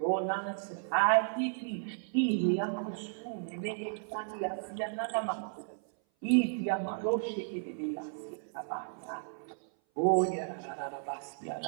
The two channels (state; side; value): silent; left; 55 dB below the other